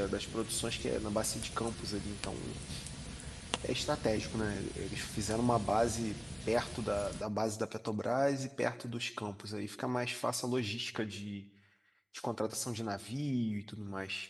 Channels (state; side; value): identical; both; correlation 1.00